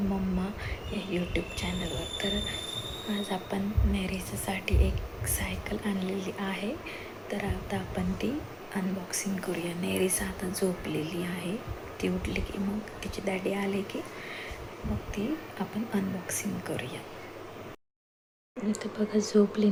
मम्मा या यूट्यूब चॅनलवर. तर आज आपण नेरीसाठी एक सायकल आणलेली आहे. तर आता आपण ती अनबॉक्सिंग करूया. नेरीसा आता झोपलेली आहे. ती उठली की मग तिची डॅडी आले की मग ती आपण अनबॉक्सिंग करूया. इथे बघा झोपली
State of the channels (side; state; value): both; identical; correlation 1.00